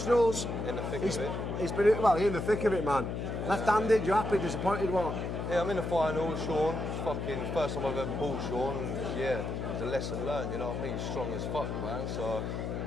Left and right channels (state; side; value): noise; left; hum, 3 dB below the sound